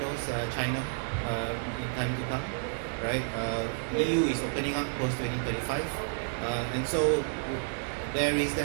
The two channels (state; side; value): silent; left; 57 dB below the other